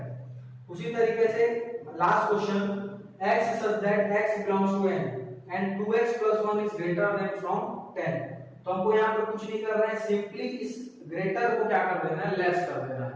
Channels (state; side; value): identical; both; correlation 1.00